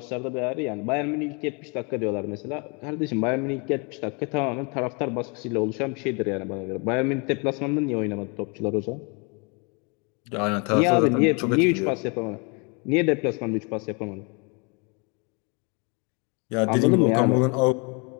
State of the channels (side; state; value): right; quieter; 33.0 dB